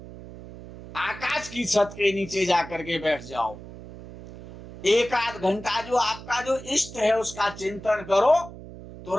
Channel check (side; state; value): right; noise; hum, 15 dB below the sound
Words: आकाश की छत के नीचे जाकर के बैठ जाओ। एक आध घंटा जो आपका जो इष्ट है उसका चिंतन करो, तो